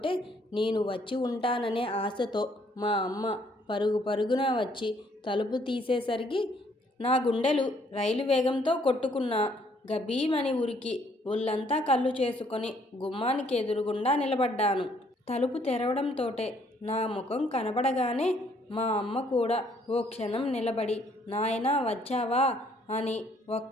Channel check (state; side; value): normal; both; correlation 0.65